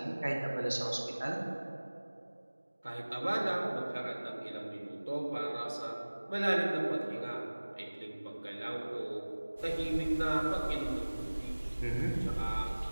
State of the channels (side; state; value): both; inverted; correlation -1.00